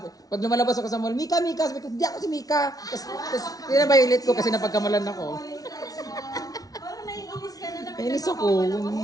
pag lumalabas ako sa mall, Mika, sabi ko, hindi ako si Mika. Tapos pinabayulit ko kasi napagkamalan ako. Nainis ako.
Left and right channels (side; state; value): right; late; 0.18 ms